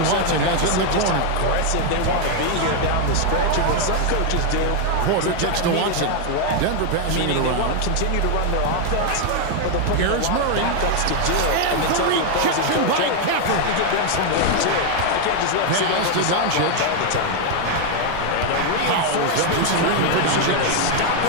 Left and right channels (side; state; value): both; different; correlation 0.00